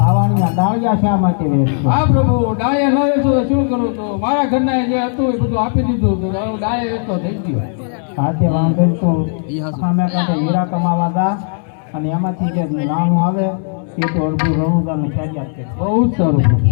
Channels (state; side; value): silent; right; 68 dB below the other